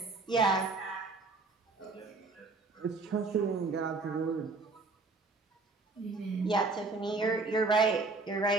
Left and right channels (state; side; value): quieter; left; 3.7 dB